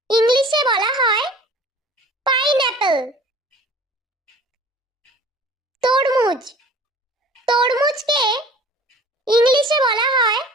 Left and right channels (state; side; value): normal; both; correlation 0.47